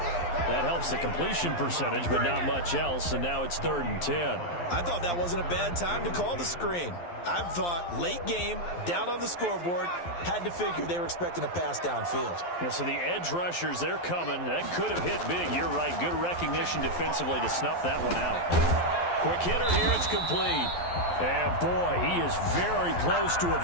That helps the completion percentage, but not much else, and now it's 3rd and 10. I thought that wasn't a bad time to call the screen. I thought late game, down on the scoreboard, had to figure they were expecting a pass downfield. Yeah, so the edge rushers, they're coming. That could have hit big. You're right. Good recognition defensively to snuff that one out. Quick hitter here. It's complete. And, boy, he is very close to a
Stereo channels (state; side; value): late; right; 12 ms